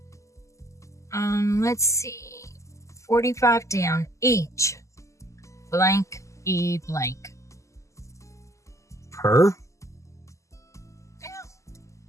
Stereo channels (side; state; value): right; late; 0.15 ms